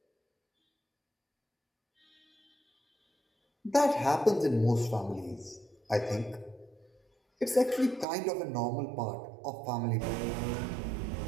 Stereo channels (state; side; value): drops out; left; at 8.1 s